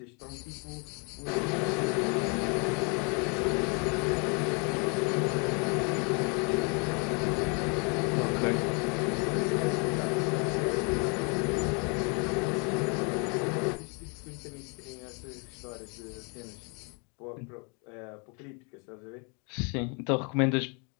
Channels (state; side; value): quieter; right; 35.0 dB